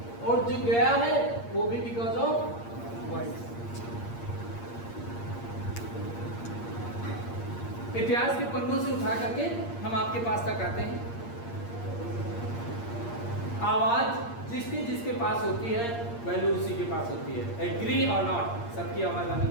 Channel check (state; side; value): late; right; 8.6 ms